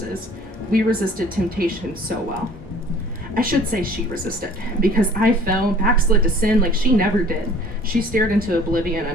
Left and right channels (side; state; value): both; normal; correlation 0.51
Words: We resisted temptation so well. I should say she resisted, because I fell, backslid to sin like she never did. She stared into oblivion,